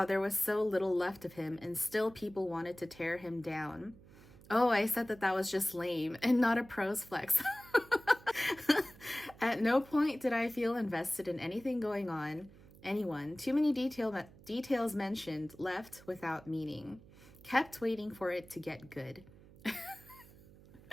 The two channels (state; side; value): noise; right; hum, 22 dB below the sound